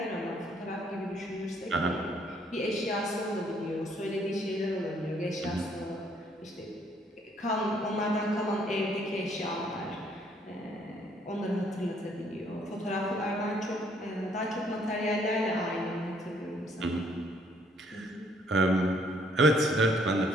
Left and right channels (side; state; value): both; normal; correlation 0.65